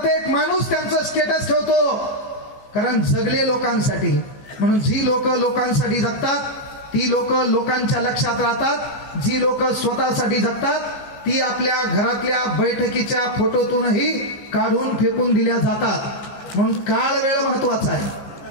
माणूस त्यांचं स्टेटस ठेवतो, कारण जगले लोकांसाठी. म्हणून जी लोक लोकांसाठी जगतात ती लोक लोकांच्या लक्षात राहतात. जी लोक स्वतःसाठी जगतात ती आपल्या घरातल्या बैठकीच्या फोटोतूनही काढून फेकून दिल्या जातात. म्हणून काळ वेळ महत्वाचा आहे,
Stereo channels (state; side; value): late; right; 15 ms